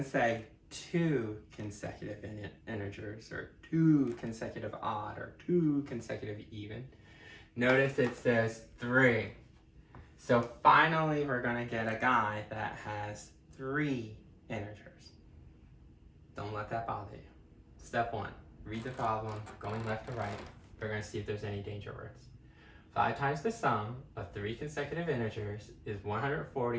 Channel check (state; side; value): identical; both; correlation 1.00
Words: say two consecutive integers or two consecutive odd or two consecutive even. Notice it says 3. So finally we're going to get a guy that has 3 integers. Don't let that bother you. Step 1, read the problem, going left to right. We're going to see if there's any danger words. 5 times the sum of 3 consecutive integers is